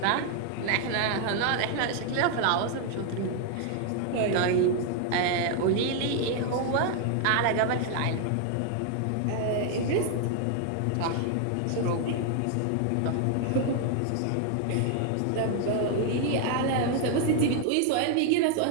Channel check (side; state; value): both; different; correlation 0.00